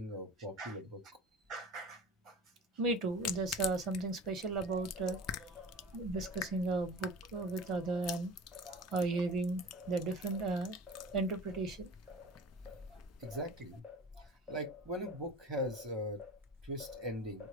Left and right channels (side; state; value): both; normal; correlation 0.39